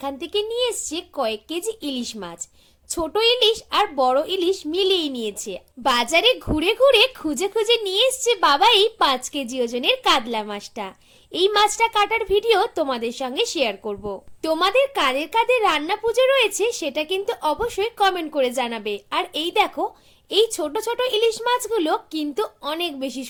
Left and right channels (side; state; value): both; identical; correlation 1.00